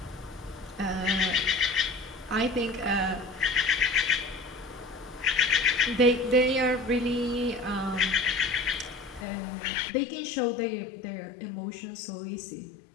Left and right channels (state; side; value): drops out; right; at 9.2 s